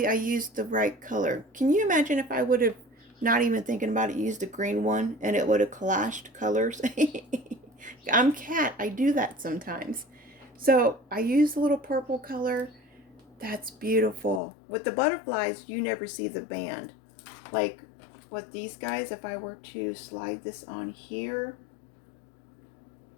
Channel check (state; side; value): drops out; right; at 14.4 s